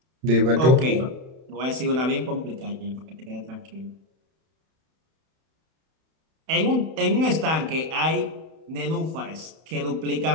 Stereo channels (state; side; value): late; left; 31 ms